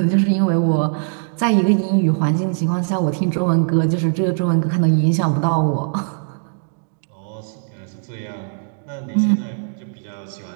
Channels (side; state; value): left; silent; digital silence